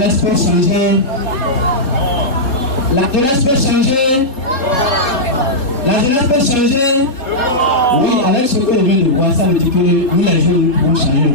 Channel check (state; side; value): late; right; 3.7 ms